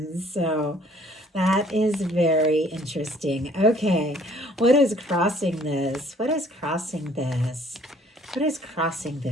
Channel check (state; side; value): normal; both; correlation 0.58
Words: so that is very interesting. Okay, what is crossing this? What is crossing this? What is crossing